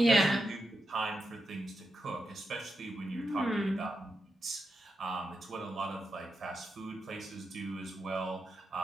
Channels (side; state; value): both; normal; correlation 0.87